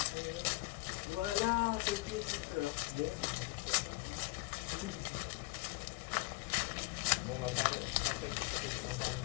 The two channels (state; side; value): quieter; right; 23.9 dB